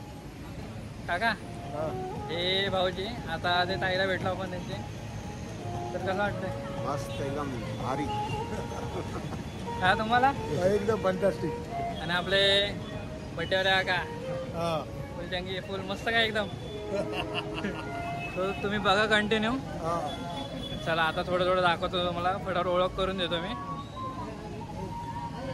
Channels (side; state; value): both; identical; correlation 1.00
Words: काका हे भाऊजी, आता ते ताईला भेटलो आपण त्यांचे, तर कसं वाटतंय? मस्त एकदम भारी. का तुम्हाला? एकदम फंटास्टिक. आणि आपले बड्डेवाले काका फुल जंगी फुल मस्त काय एकदम. तो तुम्ही बघा कंटिन्यू. चला आता थोडं थोडं दाखवतो तुम्हाला, फटाफट ओळख करून देतो मी.